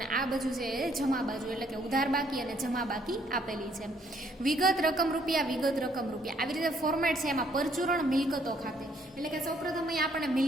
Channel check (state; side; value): normal; both; correlation 0.66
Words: આ બાજુ છે જમા બાજુ, એટલે કે ઉધાર બાકી અને જમા બાકી આપેલી છે. વિગત રકમ રૂપિયા આવી રીતે ફોર્મેટ છે. એમાં પરચુરણ મિલકતો ખાતે એટલે કે સૌપ્રથમ અહીંયા આપણને